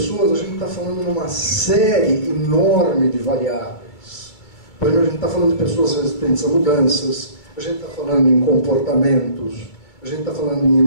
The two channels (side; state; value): right; late; 2.3 ms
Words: a gente está falando numa série enorme de variáveis. Por exemplo, a gente está falando de pessoas resistentes a mudanças, a gente está falando em comportamentos, a gente está falando em